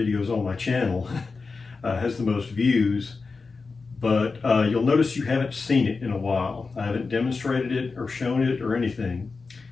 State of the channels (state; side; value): quieter; right; 4.3 dB